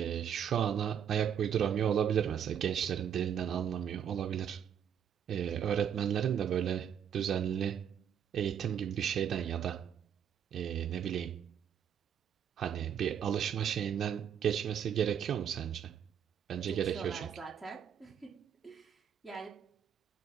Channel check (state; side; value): quieter; left; 8.7 dB